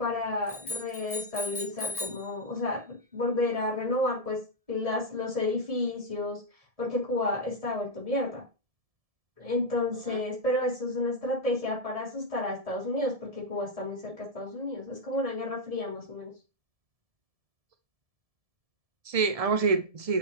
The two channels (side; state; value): left; late; 1.7 ms